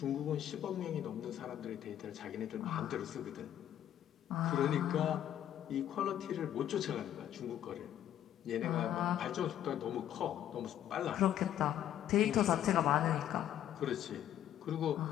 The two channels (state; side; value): quieter; right; 11.2 dB